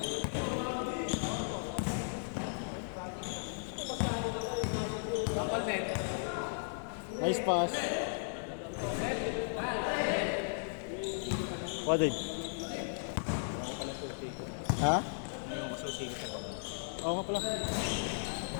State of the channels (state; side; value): silent; right; digital silence